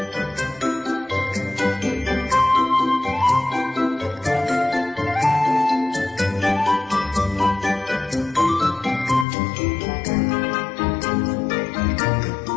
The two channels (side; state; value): right; drops out; at 9.2 s